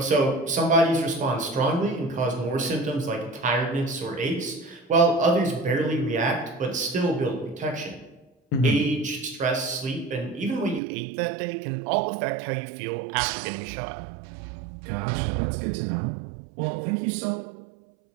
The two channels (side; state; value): left; drops out; at 10.8 s